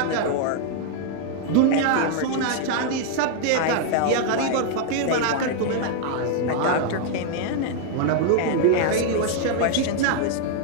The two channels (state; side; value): different; both; correlation 0.00